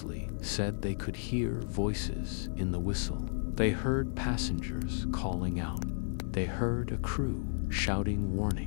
said they could hear voices in the whistle. They heard passengers calling out. They heard a crew shouting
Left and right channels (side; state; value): right; silent; digital silence